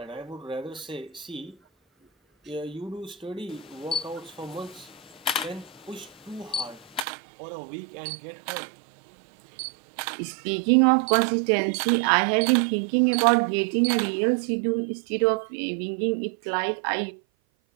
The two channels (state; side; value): drops out; left; at 7.1 s